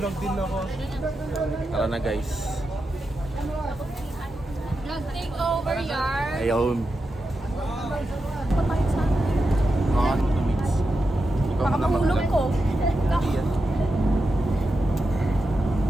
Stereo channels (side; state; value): both; normal; correlation 0.88